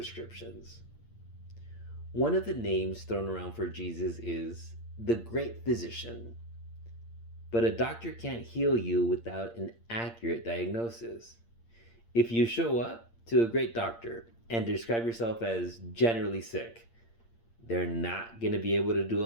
One of the names thrown around for Jesus is the great physician. But a doctor can't heal you without an accurate diagnosis. If you show up to a great doctor and describe yourself as generally sick, they're not going to be able to do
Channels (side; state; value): right; late; 8.7 ms